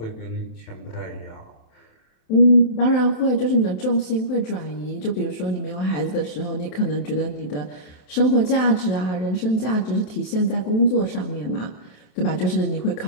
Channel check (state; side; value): late; right; 27 ms